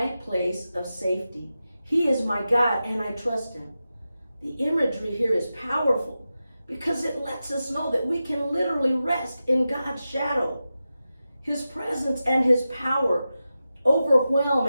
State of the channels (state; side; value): inverted; both; correlation -0.92